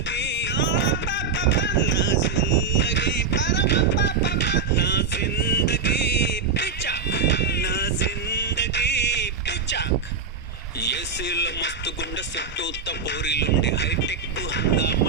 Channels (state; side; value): quieter; left; 5.3 dB